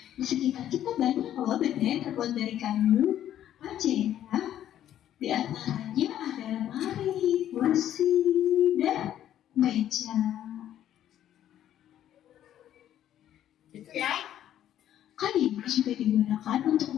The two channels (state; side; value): quieter; right; 11.4 dB